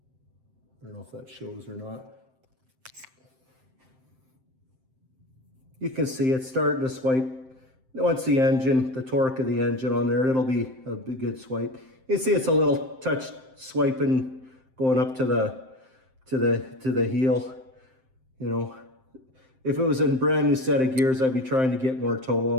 don't know if that shows or not. You can see it's starting to swipe. Once the engine, the torque of the engine on there, it'll be a good swipe. You can see it's a little touch swiping going up to the heel. You know, if it was a brand new set of gears, I'd be trying to get more toe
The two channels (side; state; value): left; late; 7.7 ms